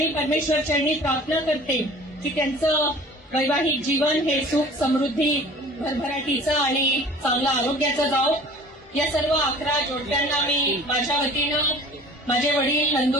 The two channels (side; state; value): both; normal; correlation 0.46